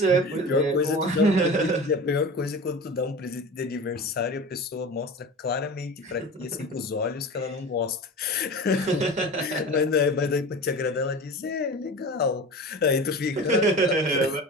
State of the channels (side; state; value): both; normal; correlation 0.33